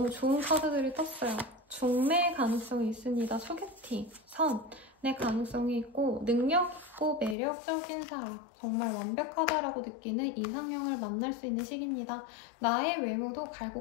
좋은 카드들이 떴어요. 중매 가능성이 있습니다. 소개팅, 선의 가능성이 있고 능력 있고 매력적인 사람, 정말 완벽하다라고 느끼는 이상형을 만날 수 있는 시기입니다. 나의 외모도 갈고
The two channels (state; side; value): drops out; right; at 7.4 s